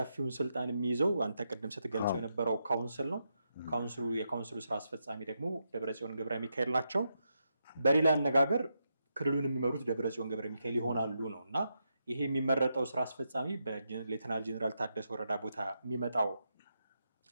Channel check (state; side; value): inverted; both; correlation -0.83